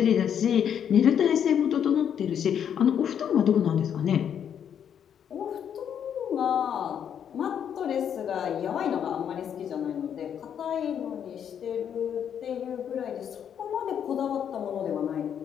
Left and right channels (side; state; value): right; quieter; 8.6 dB